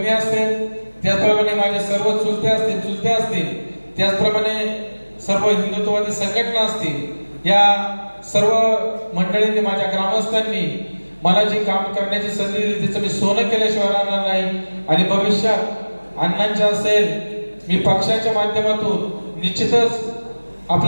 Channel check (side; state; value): both; inverted; correlation -1.00